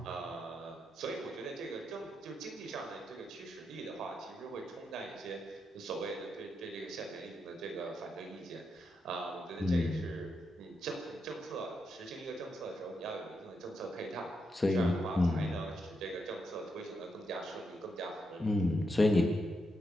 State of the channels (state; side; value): normal; both; correlation 0.83